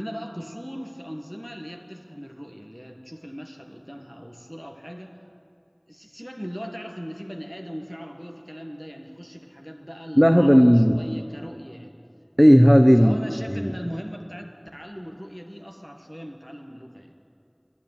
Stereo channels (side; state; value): both; identical; correlation 1.00